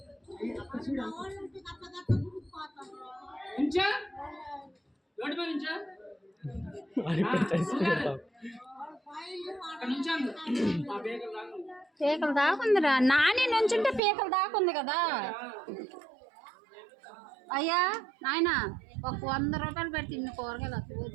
పీకలు దాకుందిరా నాని నుంచుంటే పీకలు దాకుంది కదా. అయ్యా నాయన ఒక 100 రూపాయలు పెడితే ఇన్ని కూరగాయలు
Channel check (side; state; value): left; drops out; at 14.0 s